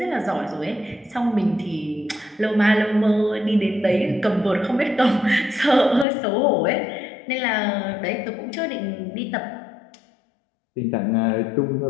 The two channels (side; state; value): right; drops out; at 6.1 s